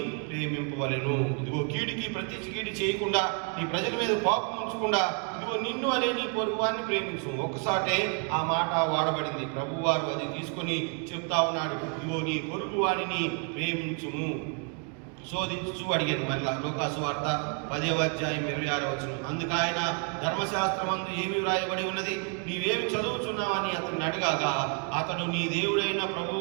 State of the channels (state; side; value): quieter; left; 37.9 dB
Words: ప్రేమింపవలెను. ఇదిగో కీడుకి ప్రతి కీడు చేయకుండా, నీ ప్రజల మీద కోపం ఉంచకుండా, ఇదిగో నిన్ను వలె నీ పొరుగు వారిని ప్రేమించు. ఒక్కసాటే ఆ మాట వాడబడింది. ప్రభువారు అది తీసుకొని చెప్తా ఉన్నాడు, ఇదిగో నీ పొరుగు వారిని ప్రేమించుము. శోధించు అడిగాను. మళ్ళా లూకాసు వార్త 10వ అధ్యాయం 26వ వచనం, అందుకు ఆయన ధర్మశాస్త్రమందు ఏమి వ్రాయబడి ఉన్నది, నీవేమి చదువుతున్నావని అతన్ని అడగాక, అతడు నీ దేవుడైన